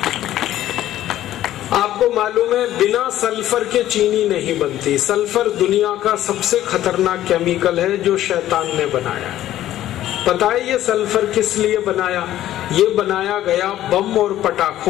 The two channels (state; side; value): quieter; right; 13.2 dB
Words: आपको मालूम है बिना सल्फर के चीनी नहीं बनती। सल्फर दुनिया का सबसे खतरनाक केमिकल है जो शैतान ने बनाया। पता है ये सल्फर किस लिए बनाया? ये बनाया गया बम और